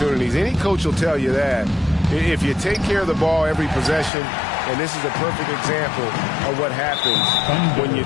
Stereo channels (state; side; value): drops out; right; at 4.1 s